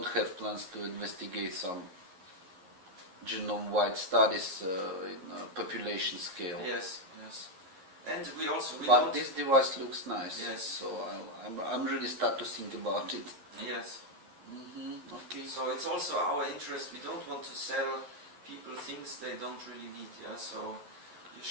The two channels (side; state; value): left; late; 11 ms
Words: have plans to investigate some genome-wide studies in population scale. Yes, yes. And we also... But this device looks nice. Yes. So I'm really start to think about it. Yes. Okay. So it's also our interest. We don't want to sell people things they don't really need. Yeah. So you